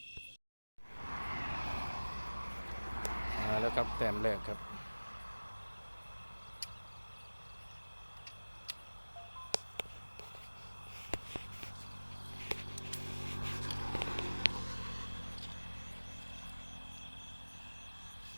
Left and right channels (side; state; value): both; inverted; correlation -1.00